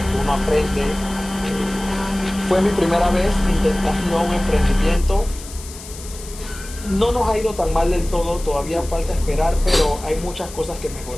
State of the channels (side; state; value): left; noise; hiss, 15 dB below the sound